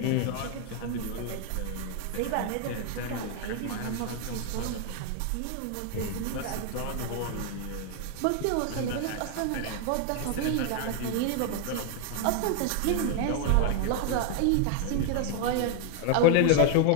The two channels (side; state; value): both; different; correlation 0.00